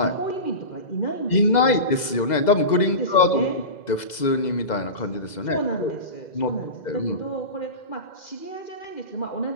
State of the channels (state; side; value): late; right; 2.0 ms